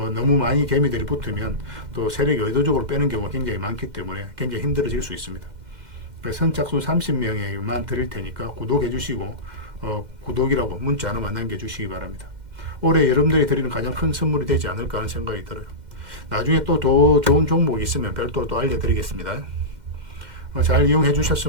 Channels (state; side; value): late; left; 2.1 ms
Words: 많이 개미들이 붙으면 또 세력이 의도적으로 빼는 경우가 굉장히 많기 때문에 굉장히 힘들어질 수 있습니다. 선착순 30명에만 드릴 테니까 구독해 주시고 구독이라고 문자 하나만 남겨주시기 바랍니다. 올해 여러분들이 드리는 가장 큰 선물이 되지 않을까 하는 생각이 들어요. 나중에 또 더 좋은 종목이 있으면 별도로 또 알려드리겠습니다. 잘 이용해